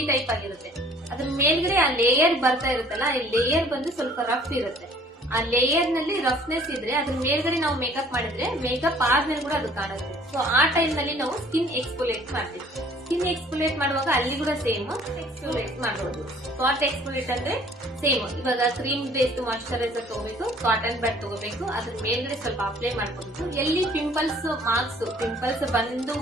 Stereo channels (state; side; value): normal; both; correlation 0.55